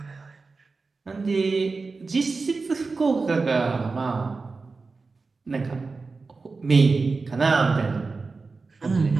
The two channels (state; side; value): quieter; left; 4.1 dB